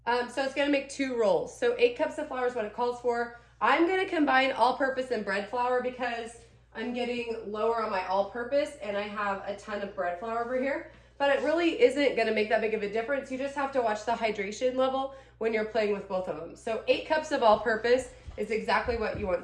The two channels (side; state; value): both; identical; correlation 1.00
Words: so it's gonna make 2 rolls. So 8 cups of flour is what it calls for. I'm gonna combine all-purpose and bread flour because I'm getting lower on my all-purpose and I have a ton of bread flour over here, but it really isn't gonna make that big of a difference. You just have to watch the hydration level when you're playing with both of them. So 8 cups of all-purpose is exactly what you